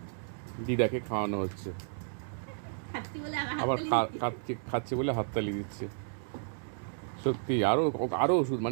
দিদাকে খাওয়ানো হচ্ছে, আবার খাচ্ছে বলে হাততালি দিচ্ছে। সত্যি আরও আরও ওষুধ,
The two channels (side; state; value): left; silent; digital silence